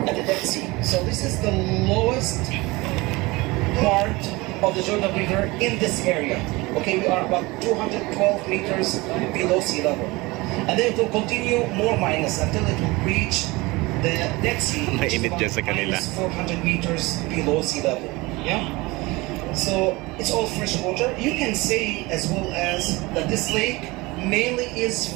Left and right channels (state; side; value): quieter; left; 22.8 dB